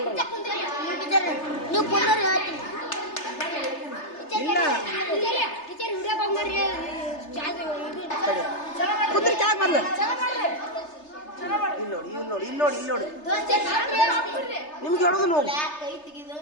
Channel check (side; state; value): right; late; 3.3 ms